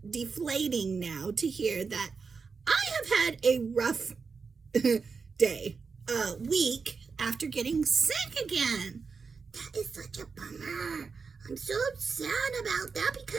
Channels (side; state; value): left; quieter; 5.1 dB